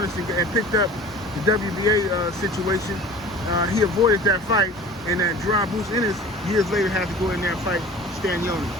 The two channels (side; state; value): both; normal; correlation 0.42